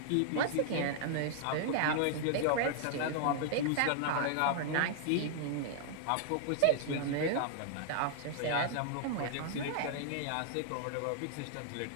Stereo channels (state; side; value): different; both; correlation -0.01